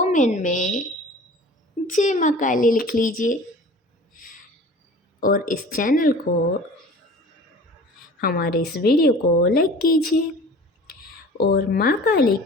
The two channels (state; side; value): normal; both; correlation 0.43